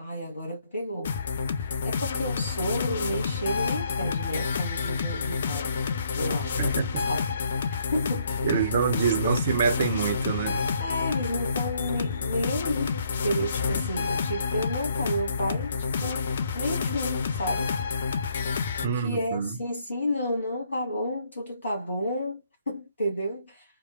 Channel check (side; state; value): both; inverted; correlation -0.69